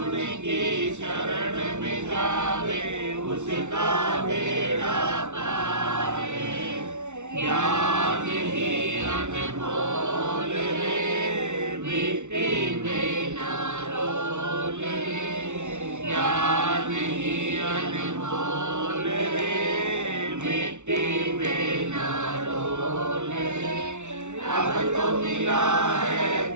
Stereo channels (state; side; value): late; left; 0.83 ms